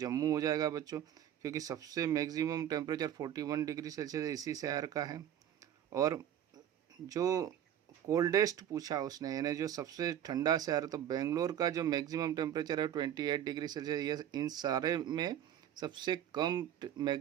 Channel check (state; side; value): quieter; left; 10.5 dB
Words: हो जाएगा बच्चों, क्योंकि सबसे मैक्सिमम टेम्परेचर 41 डिग्री सेल्सियस इसी शहर का है। और जो कोल्डेस्ट पूछा उसने, यानी जो सबसे ठंडा शहर, तो बेंगलोर का जो मैक्सिमम टेम्परेचर है 28 डिग्री सेल्सियस, ये इन सारे में सबसे कम